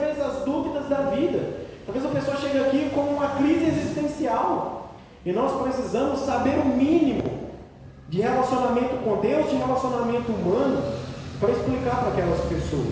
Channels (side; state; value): both; identical; correlation 1.00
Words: às dúvidas da vida. Talvez a pessoa chegue aqui com uma crise existencial e nós precisamos saber o mínimo de relacionamento com Deus, de relacionamento humano, para explicar para aquelas